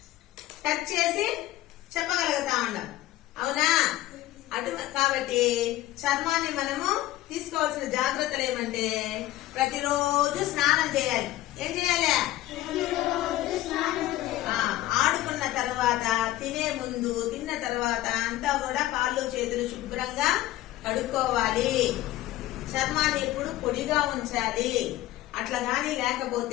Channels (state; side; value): quieter; right; 15.6 dB